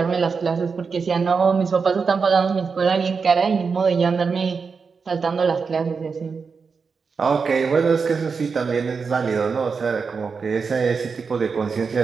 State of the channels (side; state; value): left; quieter; 5.2 dB